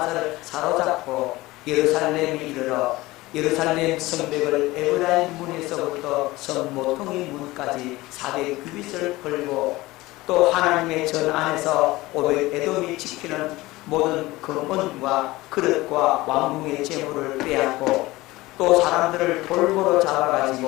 사로잡고 예루살렘에 이르러 예루살렘 성벽을 에브라임 문에서부터 성 모퉁이 문까지 400규빗을 걸고 또 하나님의 전 안에서 오벳에돔이 지키는 모든 금은과 그릇과 왕궁의 재물을 빼앗고 또 사람들을 볼모로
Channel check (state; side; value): quieter; right; 19.5 dB